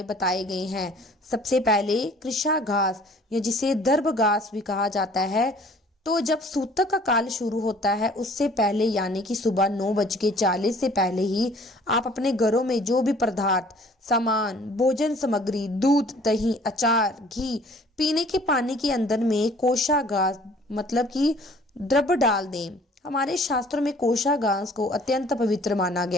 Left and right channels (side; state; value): both; normal; correlation 0.54